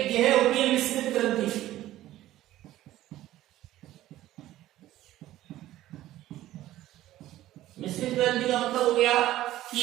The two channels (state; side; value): quieter; left; 14.5 dB